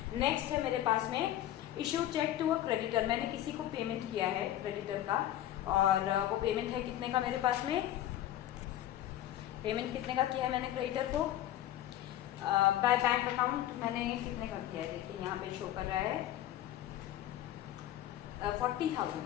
नेक्स्ट है मेरे पास में issue cheque to a creditor, मैंने किसी को पेमेंट किया है क्रेडिटर का, और वो पेमेंट है कितने का, मेरे पास में पेमेंट कितने का किया है मैंने क्रेडिटर को, बाय बैंक अकाउंट मैंने कितने का किया है, देखिए यहाँ पे शो कर रहा है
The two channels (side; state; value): right; quieter; 12.9 dB